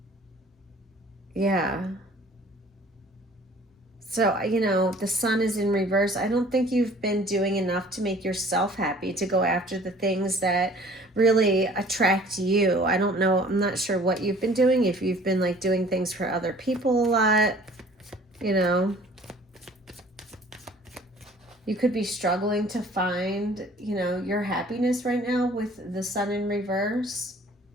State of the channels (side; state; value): both; normal; correlation 0.51